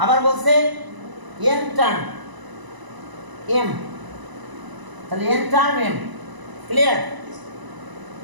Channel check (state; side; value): late; left; 1.0 ms